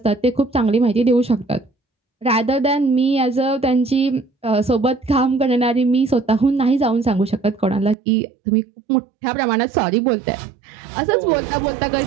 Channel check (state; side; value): drops out; left; at 8.0 s